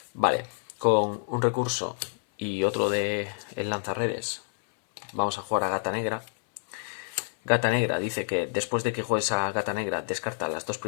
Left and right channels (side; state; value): right; silent; 59 dB below the other